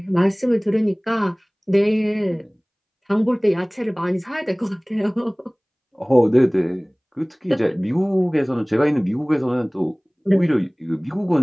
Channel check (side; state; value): both; identical; correlation 1.00